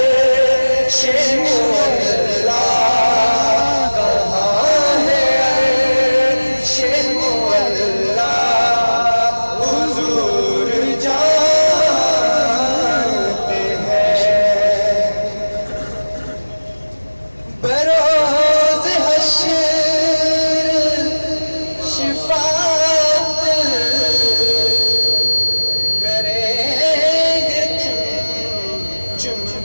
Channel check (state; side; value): inverted; both; correlation -1.00